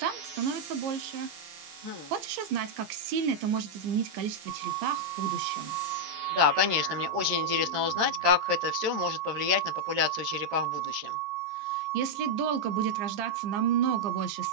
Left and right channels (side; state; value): left; late; 13 ms